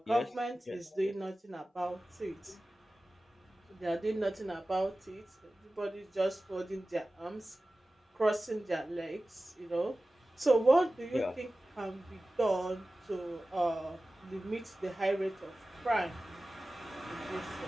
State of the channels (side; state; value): both; normal; correlation 0.96